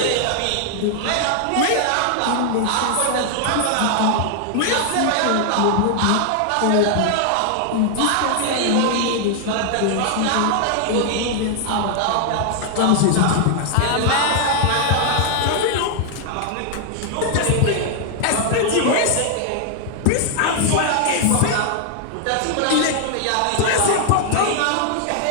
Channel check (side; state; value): both; different; correlation 0.00